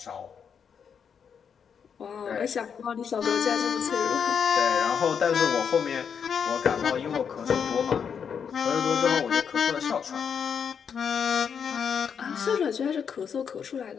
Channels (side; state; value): right; quieter; 7.1 dB